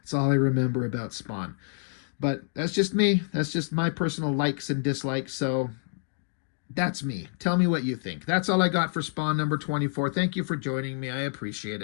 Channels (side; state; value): right; silent; digital silence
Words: all I remember about Spawn. But that's just me. That's just my personal likes and dislikes. So that's me. Tell me what you think. That's all I got for Spawn number 24. Thank you for joining me. I appreciate